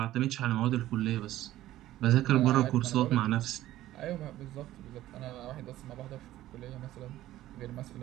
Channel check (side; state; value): left; quieter; 14.6 dB